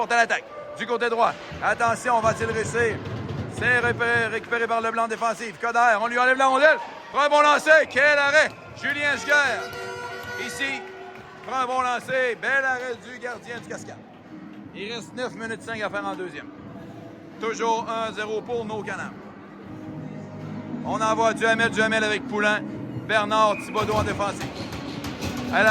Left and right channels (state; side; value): identical; both; correlation 1.00